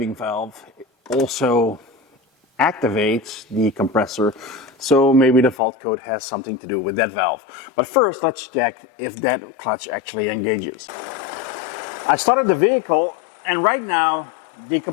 valve also activates the compressor, so maybe the fault code has something to do with that valve. But first, let's check if that clutch actually engages. I started the vehicle, and right now, the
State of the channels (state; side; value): drops out; right; at 5.6 s